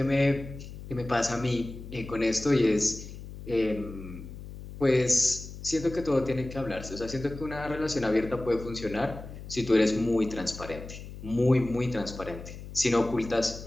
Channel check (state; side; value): noise; left; hum, 12 dB below the sound